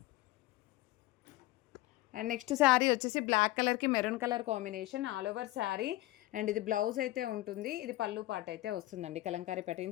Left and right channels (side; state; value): right; quieter; 17.7 dB